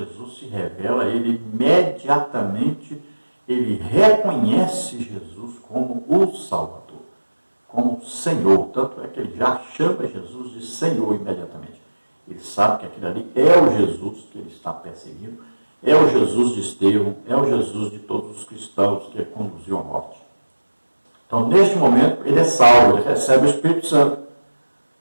se revela a ele imediatamente, ele reconhece Jesus como o Salvador, como Senhor. Tanto é que ele já chama Jesus de Senhor imediatamente. Ele sabe que aquele ali é o Jesus que ele está perseguindo, é o Jesus de Estevão, é o Jesus de todos os cristãos que ele conduziu à morte. Então, neste momento, ele é salvo, ele recebe o Espírito Santo.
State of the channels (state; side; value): inverted; both; correlation -1.00